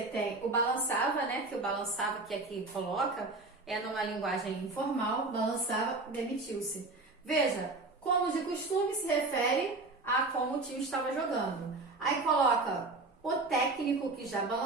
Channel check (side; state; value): left; quieter; 3.3 dB